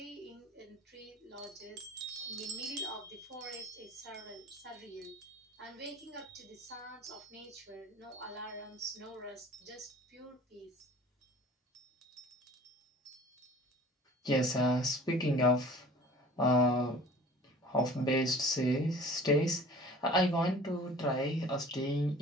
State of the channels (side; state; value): both; normal; correlation 0.44